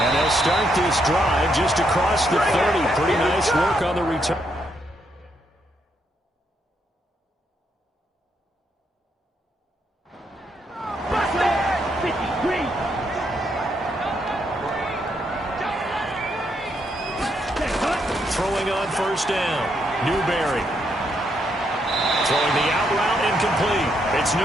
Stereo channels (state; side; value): normal; both; correlation 0.77